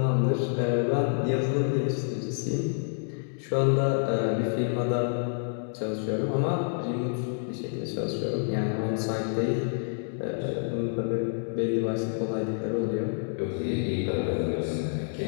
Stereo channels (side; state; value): right; silent; digital silence